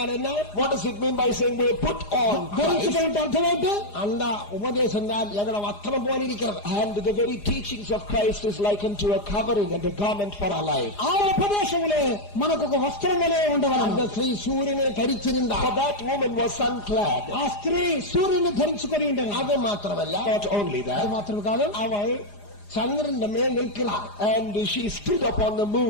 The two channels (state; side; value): late; right; 4.9 ms